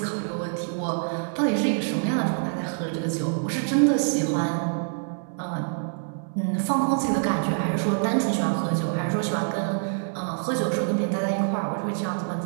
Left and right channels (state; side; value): silent; left; digital silence